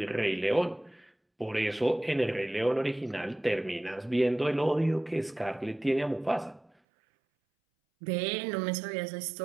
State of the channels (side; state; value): left; drops out; at 6.7 s